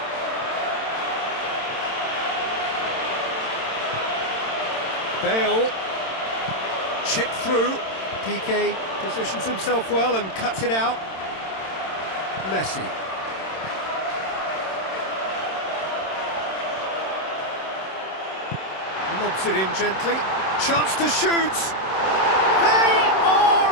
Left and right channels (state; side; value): late; right; 27 ms